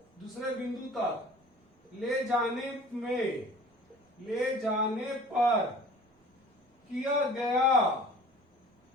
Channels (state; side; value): normal; both; correlation 0.46